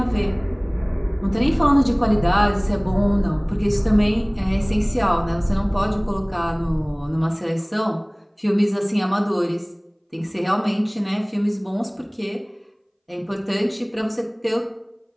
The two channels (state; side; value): identical; both; correlation 1.00